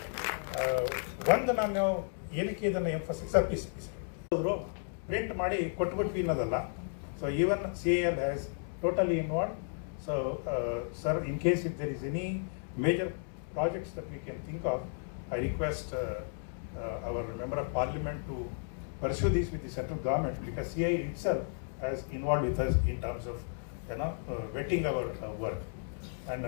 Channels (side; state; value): right; silent; digital silence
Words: ಒಂದು ನಾನು ಏನಕ್ಕೆ ಇದನ್ನು ಎಂಫಸಿಸ್ ಅವರು ಪ್ರಿಂಟ್ ಮಾಡಿ ಕೊಟ್ಬಿಟ್ವಿ ಅನ್ನೋದಲ್ಲ. So even CIL has totally involve. So sir, in case if there is any major projects that we can think of, I request our Member of Parliament to pursue this with the central government, because CIL itself has involved with us in terms of vetting our work. And